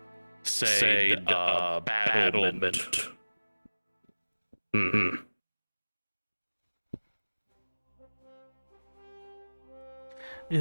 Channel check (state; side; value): inverted; both; correlation -1.00